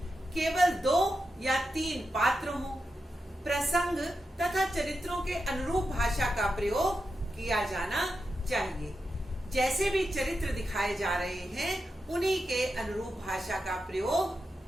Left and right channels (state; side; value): normal; both; correlation 0.88